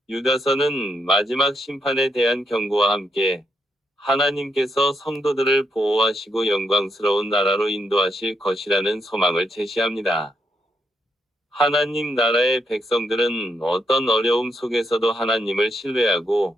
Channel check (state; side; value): normal; both; correlation 0.79